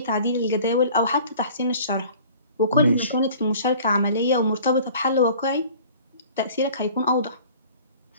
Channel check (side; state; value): both; inverted; correlation -0.47